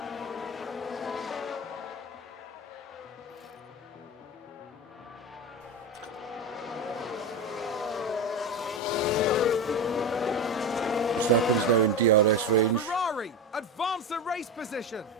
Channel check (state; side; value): normal; both; correlation 0.20